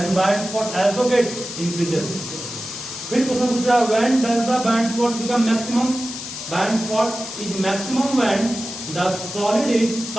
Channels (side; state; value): left; noise; hiss, 9 dB below the sound